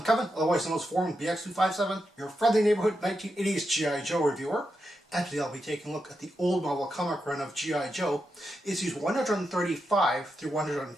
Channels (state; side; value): normal; both; correlation 0.86